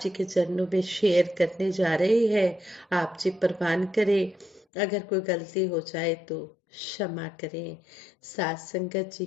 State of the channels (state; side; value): drops out; right; at 4.7 s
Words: जी के चरणों में शेयर करने जा रही है। आप जी प्रवान करें, अगर कोई गलती हो जाए तो क्षमा करें। सात संगत जी